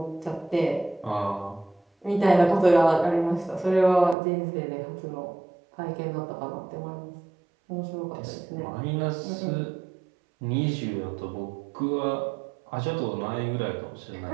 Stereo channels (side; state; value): left; drops out; at 4.2 s